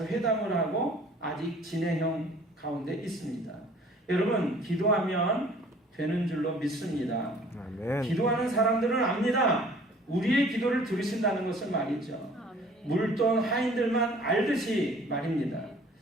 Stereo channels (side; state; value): both; normal; correlation 0.53